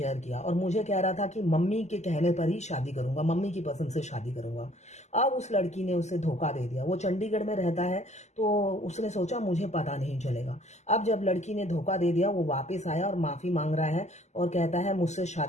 किया, और मुझे कह रहा था कि मम्मी के कहने पर ही शादी करूंगा, मम्मी की पसंद से शादी करूंगा। अब उस लड़की ने उसे धोखा दे दिया। वो चंडीगढ़ में रहता है तो उसने सोचा मुझे पता नहीं चलेगा। अब जब लड़की ने धोखा दे दिया, वो वापस आया और माफी मांग रहा है और कहता है मुझसे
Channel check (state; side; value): late; right; 0.33 ms